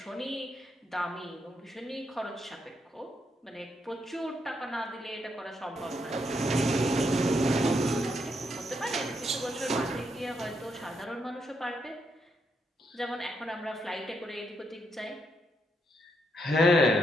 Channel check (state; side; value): normal; both; correlation 0.78